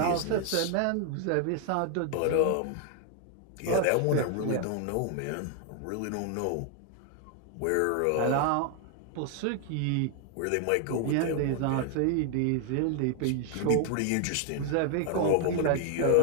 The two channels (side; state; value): both; different; correlation 0.00